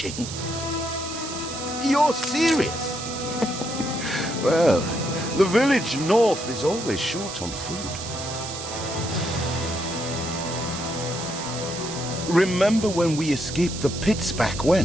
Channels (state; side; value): noise; right; hiss, 8 dB below the sound